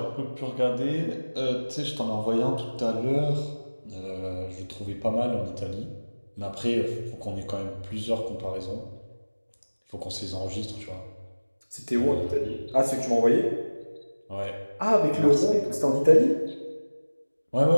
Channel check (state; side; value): inverted; both; correlation -1.00